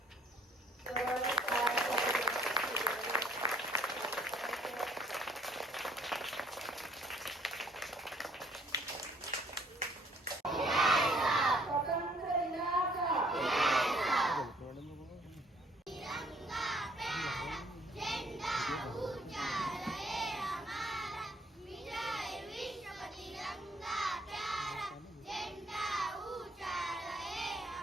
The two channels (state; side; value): normal; both; correlation 0.62